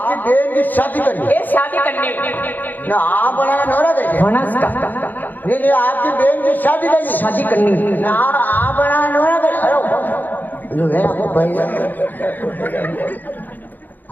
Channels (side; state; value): right; late; 0.086 ms